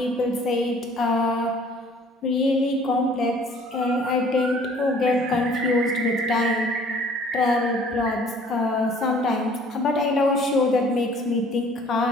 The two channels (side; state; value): both; normal; correlation 0.54